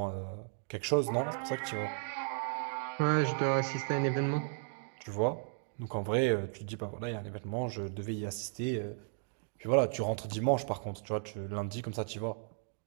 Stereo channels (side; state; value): left; silent; digital silence